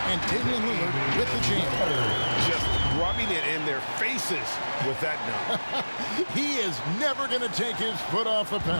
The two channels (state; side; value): inverted; both; correlation -1.00